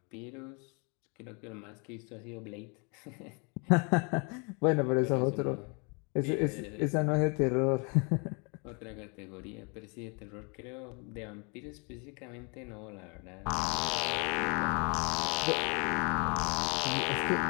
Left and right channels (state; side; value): quieter; right; 33.5 dB